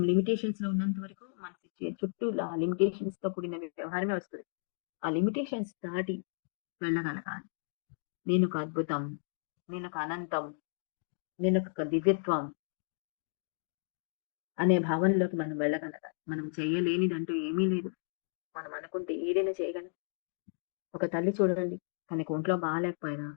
లిమిటేషన్స్‌లో ఉన్నంత వరకు మన చుట్టూ లిమిటేషన్స్‌తో కూడిన వ్యవహారమే వస్తది. ఆ లిమిటేషన్స్ దాటి వెళ్ళగలగాలి. నేనొక అద్భుతం, నేనొక అనంతం, నేనొక దివ్యత్వం అనే భావనలోకి మనం వెళ్ళగలగాలి. మనం చేయలేనిదంటూ ఏమీ లేదు. మనం అనుకుంటే ఏదైనా చేయగలం. ఒక తల్లి చూడండి, తనకి ఒంట్లో బాలేకపోయినా,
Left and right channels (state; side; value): silent; right; digital silence